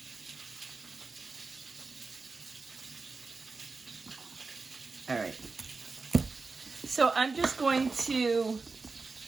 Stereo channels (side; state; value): left; quieter; 4.1 dB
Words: All right. So I'm just going to